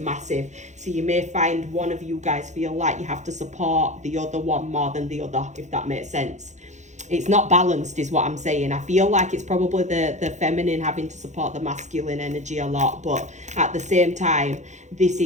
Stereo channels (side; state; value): left; late; 0.34 ms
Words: So you may find one of you guys feel like you have to support the other one more than the other, if that makes sense. It's not balanced is what I'm saying. I feel like it's probably the feminine having to support the masculine energy a lot, but at the same time, this